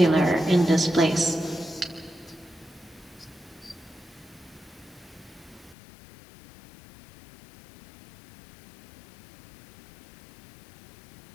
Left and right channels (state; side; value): drops out; right; at 5.8 s